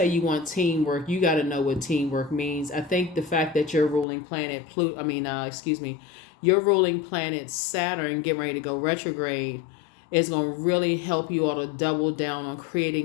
you want teamwork, you got to know what teamwork means. I think the fact that your ruling planet, your ruling planet Saturn getting ready to go retrograde is going to really help you all to double down on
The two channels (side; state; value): right; drops out; at 4.0 s